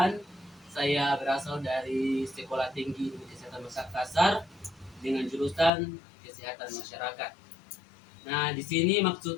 Saya berasal dari Sekolah Tinggi Ilmu Kesehatan Makassar dengan jurusan Kesehatan Masyarakat. Nah, di sini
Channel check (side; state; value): right; drops out; at 5.7 s